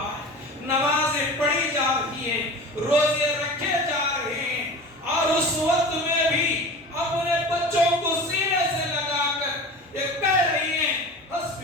ہے، نمازیں پڑھی جا رہی ہیں، روزے رکھے جا رہے ہیں، اور اس وقت میں بھی اپنے بچوں کو سینے سے لگا کر یہ کہہ رہی ہیں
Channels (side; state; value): both; normal; correlation 0.35